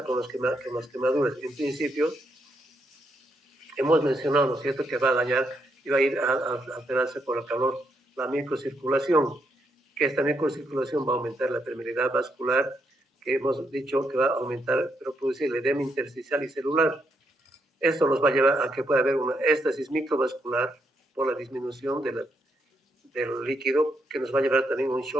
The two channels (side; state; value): both; normal; correlation 0.78